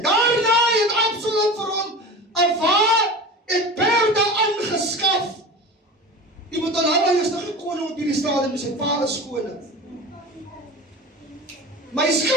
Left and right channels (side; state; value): both; normal; correlation 0.32